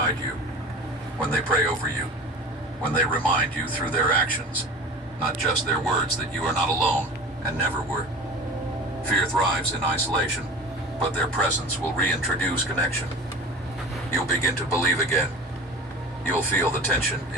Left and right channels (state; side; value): normal; both; correlation 0.37